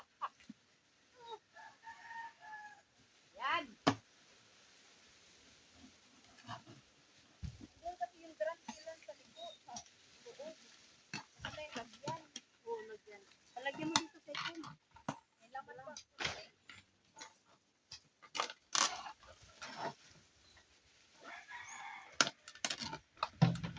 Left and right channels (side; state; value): both; identical; correlation 1.00